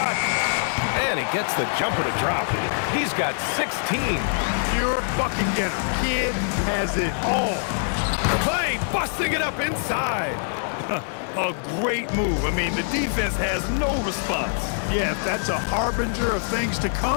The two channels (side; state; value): right; silent; 63 dB below the other